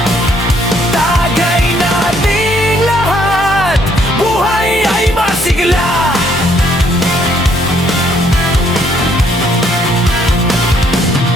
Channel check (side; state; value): both; normal; correlation 0.67